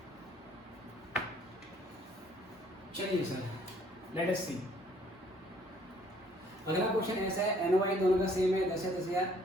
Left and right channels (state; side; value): normal; both; correlation 0.61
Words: चलिए सर, लेट अस सी। अगला क्वेश्चन ऐसा है, एनओआई दोनों का सेम है, 10,000,